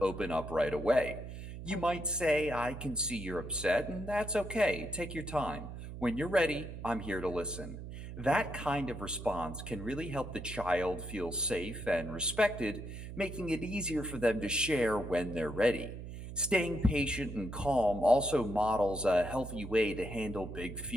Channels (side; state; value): right; noise; hum, 10 dB below the sound